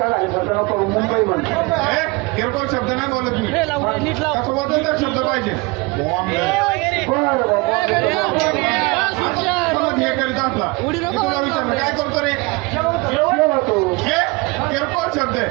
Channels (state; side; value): quieter; left; 25.6 dB